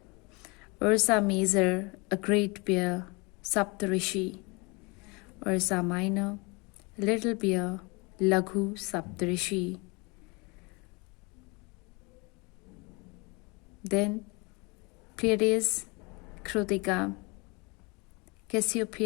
Ursa Major, a great bear, Saptarishi. Ursa Minor, little bear, Laghu Saptarishi. Then Pleiades, Krutika,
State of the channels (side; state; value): right; quieter; 28.5 dB